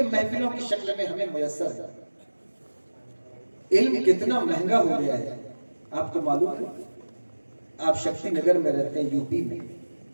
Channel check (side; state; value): both; inverted; correlation -1.00